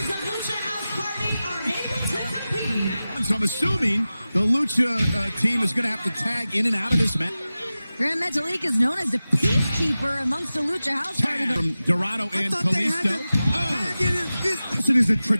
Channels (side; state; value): both; inverted; correlation -0.95